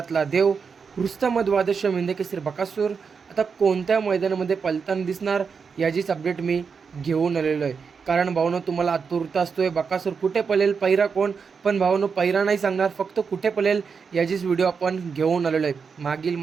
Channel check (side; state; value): left; quieter; 5.7 dB